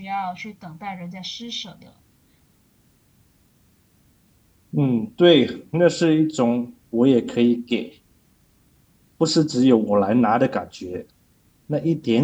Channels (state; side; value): identical; both; correlation 1.00